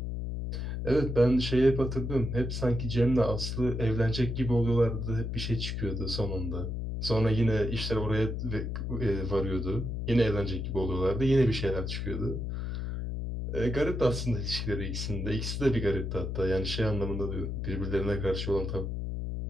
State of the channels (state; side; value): noise; left; hum, 3 dB below the sound